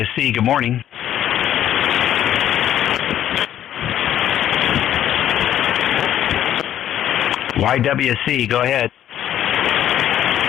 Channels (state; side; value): quieter; right; 11.3 dB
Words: good morning. YWC, go ahead.